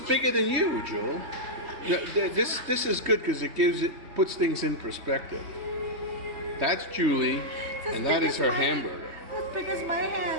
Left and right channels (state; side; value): late; left; 3.2 ms